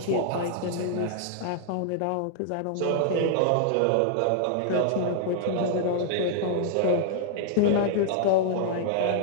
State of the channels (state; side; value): different; both; correlation -0.01